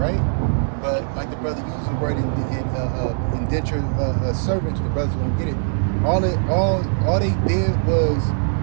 But like the brother used the word indentured servant, the brothers don't get it. All they did was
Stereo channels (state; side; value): silent; left; 61 dB below the other